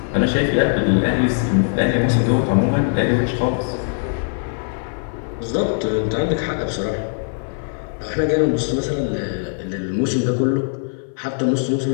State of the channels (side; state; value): right; silent; 58 dB below the other